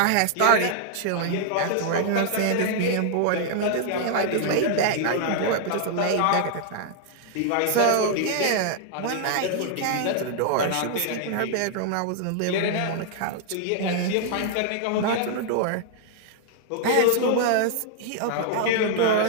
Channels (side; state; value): both; different; correlation -0.01